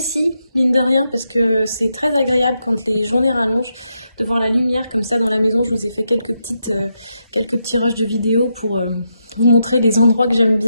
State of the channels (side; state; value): both; inverted; correlation -0.83